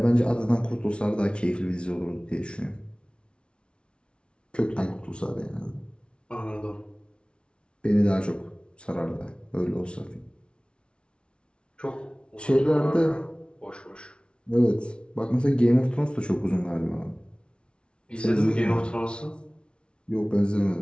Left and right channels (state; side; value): late; right; 0.058 ms